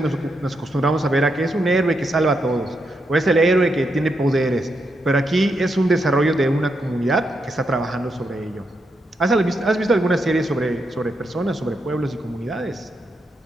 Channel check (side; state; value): both; normal; correlation 0.82